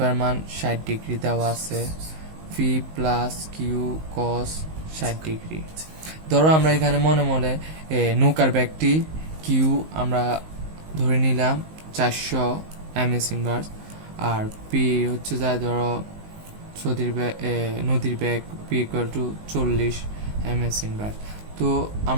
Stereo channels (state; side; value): late; left; 19 ms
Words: মান 60 ডিগ্রি দেওয়া আছে, V plus Q cos 60 degree. ধরো আমরা এখানে মনে মনে নৌকার ব্যাগটি কিউ আমরা ধরে নিলাম 400 ms ইনভার্স, আর পি হচ্ছে যায় ধরো নদীর bag P equal to 40 ms inverse. তো